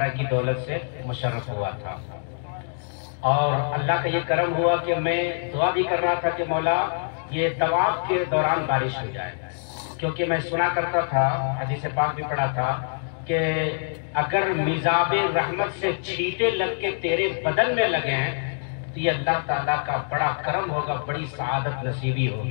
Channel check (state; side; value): silent; right; digital silence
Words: کی دولت سے مشرف ہوا تھا، اور اللہ کا یہ کرم ہوا کہ میں دعا بھی کر رہا تھا کہ مولا یہ طواف کے دوران بارش ہو جائے، کیونکہ میں سنا کرتا تھا، حدیث پاک بھی پڑھا تھا کہ اگر میزاب رحمت سے چھینٹے لگ کے تیرے بدن میں لگے ہیں تو یہ اللہ تعالیٰ کا بڑا کرم ہوگا، بڑی سعادت نصیبی